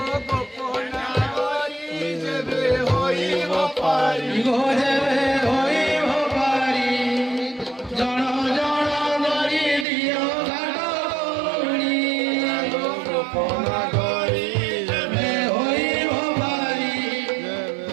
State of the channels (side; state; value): left; drops out; at 9.9 s